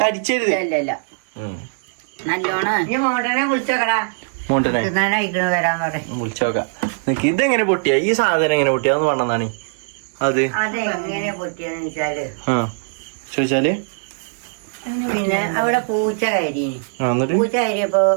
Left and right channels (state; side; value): silent; left; digital silence